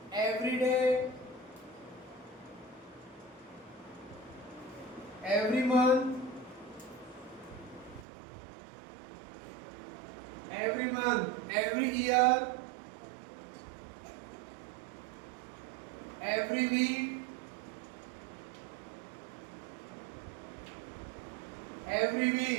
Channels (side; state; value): left; drops out; at 8.1 s